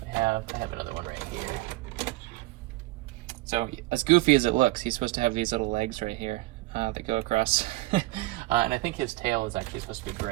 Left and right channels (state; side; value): quieter; left; 19.2 dB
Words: I have another one right here. So as goofy as it looks, he's supposed to have these little legs right here that go across. And I think his tail is actually supposed to be